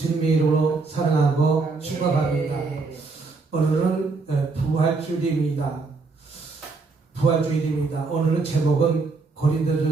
주님의 이름으로 사랑하고 축복합니다. 오늘은 부활주일입니다. 오늘은 제목은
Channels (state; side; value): quieter; left; 4.2 dB